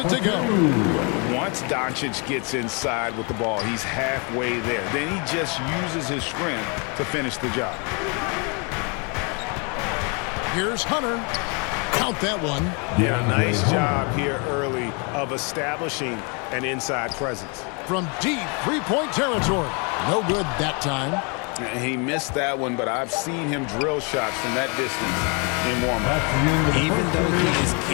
to go. Once Doncic gets inside with the ball, he's halfway there. Then he just uses his strength to finish the job. Here's Hunter. Count that one. Yeah, nice job here early of establishing an inside presence. From deep three-point territory. No good that time. He missed that one, but I've seen him drill shots from that distance in warm-up. Even though he is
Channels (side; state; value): right; quieter; 33.8 dB